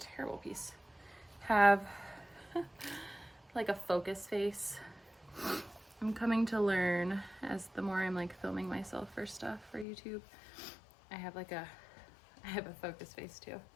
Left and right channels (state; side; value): drops out; right; at 9.9 s